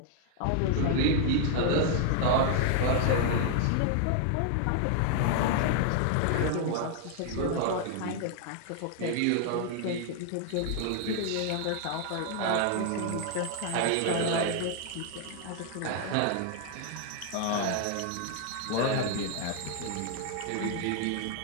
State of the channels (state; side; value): different; both; correlation 0.00